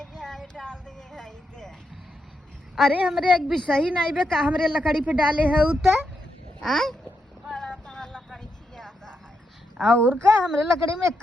जाए डाल दे है के अरे हमरे एक भी सही नहीं बे का हमरे लकड़ी पे डाले है उता आय बड़ा तो हर लकड़ी खियाता है और का हमरे लकड़ी में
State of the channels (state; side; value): normal; both; correlation 0.83